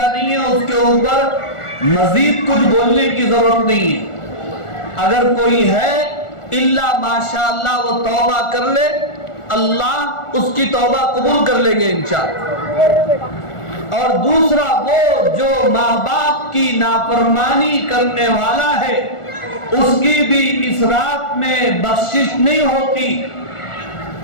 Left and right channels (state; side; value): late; right; 1.4 ms